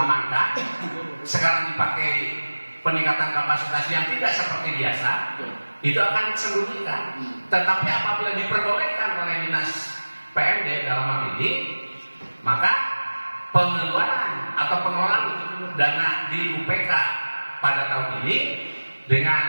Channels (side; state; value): both; inverted; correlation -1.00